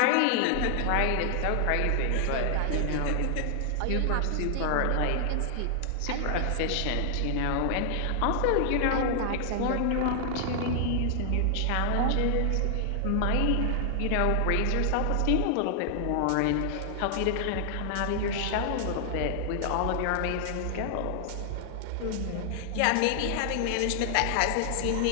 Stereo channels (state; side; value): different; both; correlation 0.00